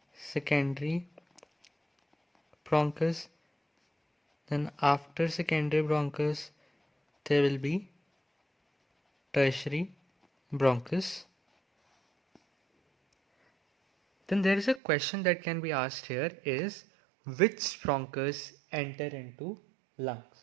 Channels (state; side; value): drops out; left; at 14.8 s